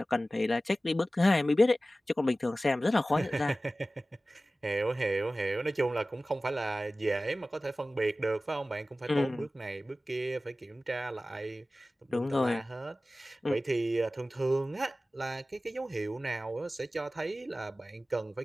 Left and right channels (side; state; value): both; normal; correlation 0.96